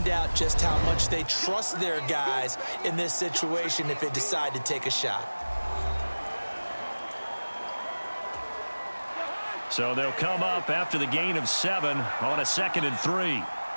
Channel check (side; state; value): both; inverted; correlation -1.00